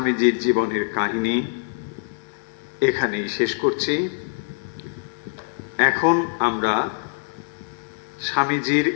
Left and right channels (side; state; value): right; silent; 59 dB below the other